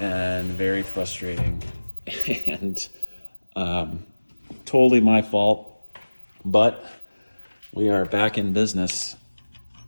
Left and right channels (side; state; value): both; inverted; correlation -1.00